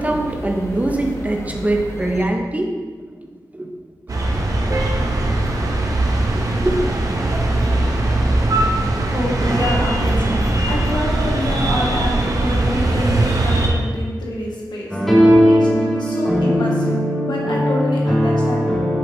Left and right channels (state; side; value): normal; both; correlation 0.88